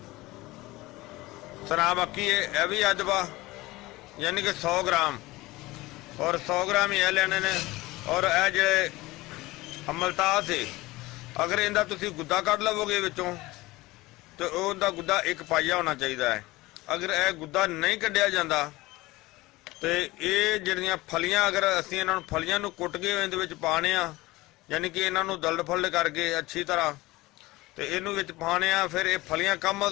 सना मक्की है यह भी अद्ध पा, यानी कि 100 ग्राम और 100 ग्राम ही लेने ने। और यह जिहड़े अमलतास है अगर इनका तुसी गुद्दा कढ़ लवोगे विचों तो उनका गुद्दा एक पाइया होना चाहिए है। अगर यह गुद्दा नहीं कढ़िया जाता तो ये जिहड़ियां फलियां अगर असीं इन्हां नूं फलियां नूं कुट के इहदे विच पाने आ, यानी कि इन्हां नूं दलद फुल्ड करके अच्छी तरह तो इनू विच पाने आ, फिर ये फलियां कम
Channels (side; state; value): right; quieter; 20.0 dB